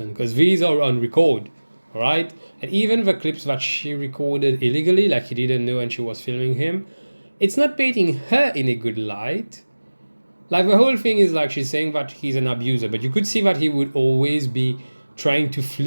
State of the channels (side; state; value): both; inverted; correlation -1.00